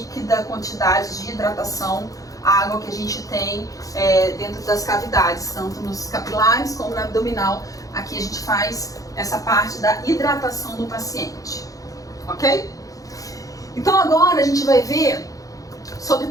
quantidade de hidratação, a água que a gente tem dentro das cavidades, tanto nos capilares como na abdominal. Aqui a gente faz essa parte da hidratação do paciente, ok? Então agora a gente vai ver sobre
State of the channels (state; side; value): late; right; 0.17 ms